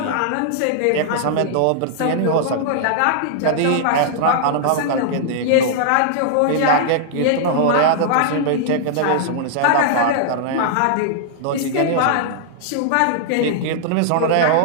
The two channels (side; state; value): both; different; correlation -0.01